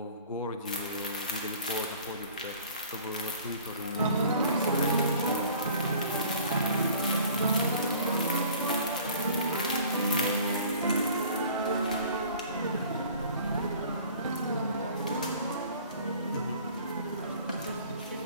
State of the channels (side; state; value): both; inverted; correlation -0.49